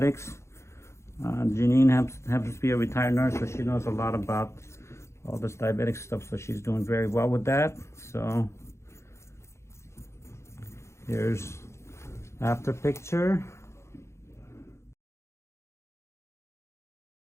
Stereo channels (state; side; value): late; right; 0.13 ms